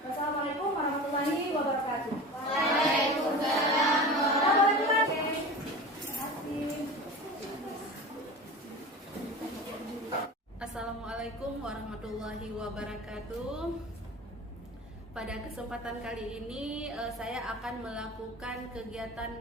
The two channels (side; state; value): both; normal; correlation 0.33